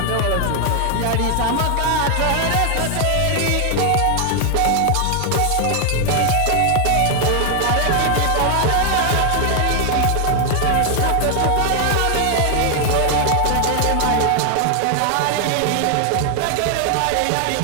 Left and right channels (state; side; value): different; both; correlation 0.00